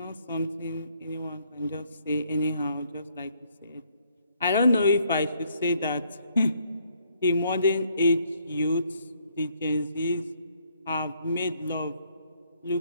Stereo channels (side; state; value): both; inverted; correlation -0.69